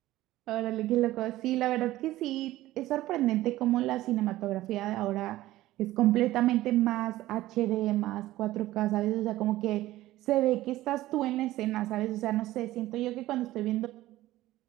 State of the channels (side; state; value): left; quieter; 16.0 dB